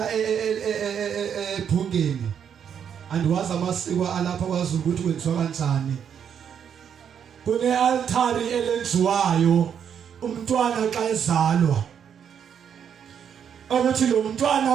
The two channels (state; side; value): quieter; left; 8.1 dB